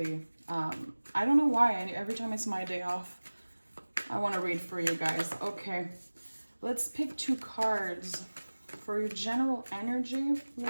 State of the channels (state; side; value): inverted; both; correlation -1.00